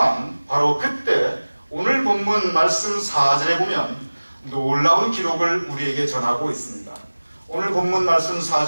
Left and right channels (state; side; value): inverted; both; correlation -1.00